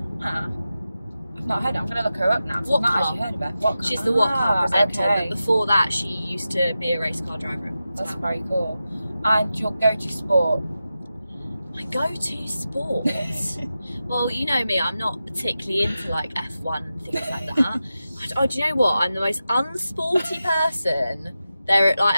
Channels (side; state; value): both; inverted; correlation -0.92